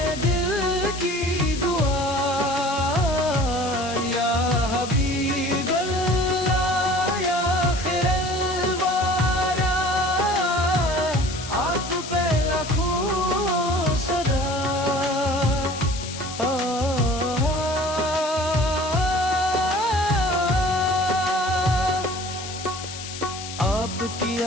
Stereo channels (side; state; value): left; noise; hiss, 10 dB below the sound